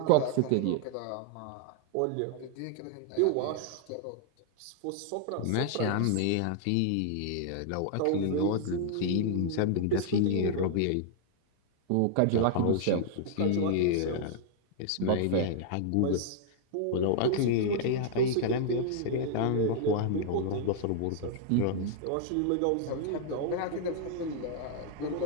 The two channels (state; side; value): different; both; correlation -0.01